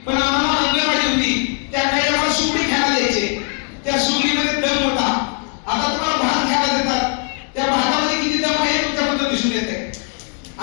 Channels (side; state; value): right; quieter; 38.7 dB